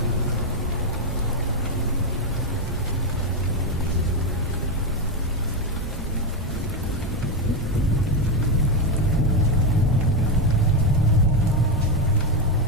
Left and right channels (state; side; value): normal; both; correlation 0.08